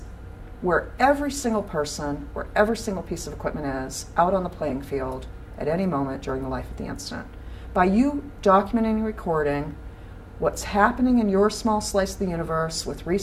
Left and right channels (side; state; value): both; identical; correlation 1.00